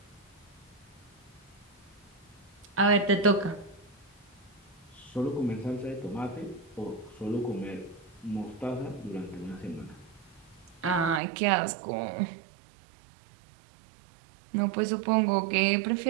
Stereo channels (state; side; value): drops out; left; at 11.2 s